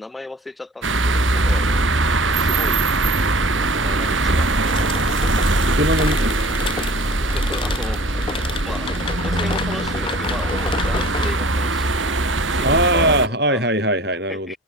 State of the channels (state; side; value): normal; both; correlation 0.45